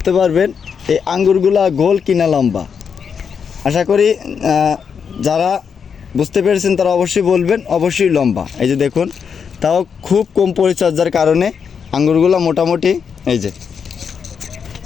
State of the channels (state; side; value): quieter; right; 6.7 dB